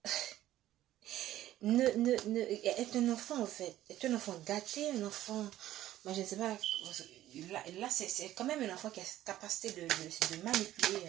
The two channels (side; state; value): left; quieter; 13.8 dB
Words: est un enfant, en fait. Est un enfant gâté, un enfant... Moi, je ne sais pas... Là c'est quand même un enfant qui a cette capacité de manipuler.